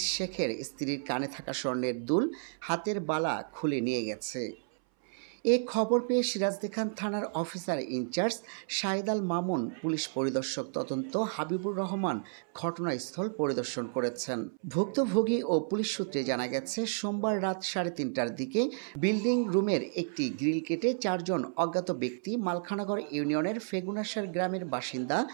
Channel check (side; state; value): left; silent; 57 dB below the other